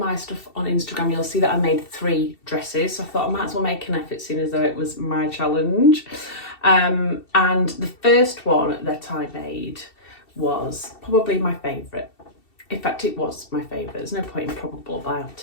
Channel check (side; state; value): right; late; 2.7 ms